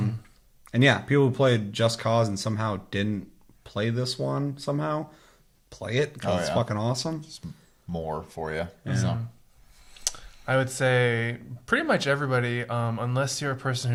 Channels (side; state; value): both; identical; correlation 1.00